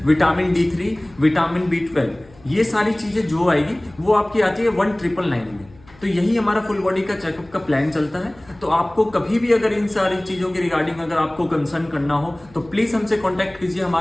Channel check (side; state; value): left; noise; hum, 26 dB below the sound